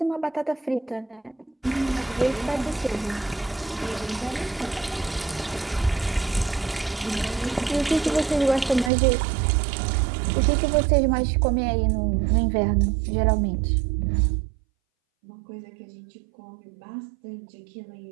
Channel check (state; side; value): drops out; left; at 8.9 s